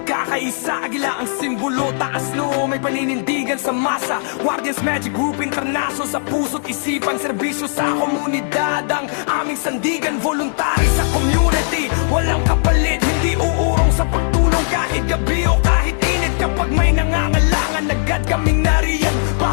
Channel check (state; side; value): silent; right; digital silence